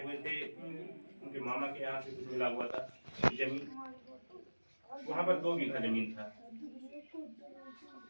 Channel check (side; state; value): both; inverted; correlation -1.00